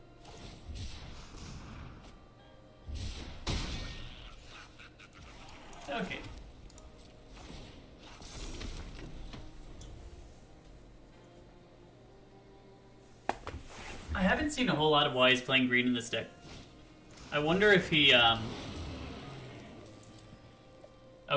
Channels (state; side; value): identical; both; correlation 1.00